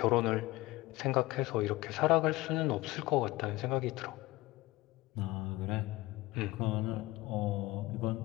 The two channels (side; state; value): right; quieter; 19.3 dB